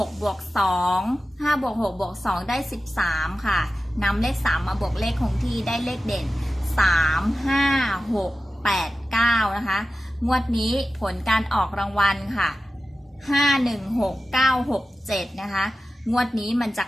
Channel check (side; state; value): both; normal; correlation 0.94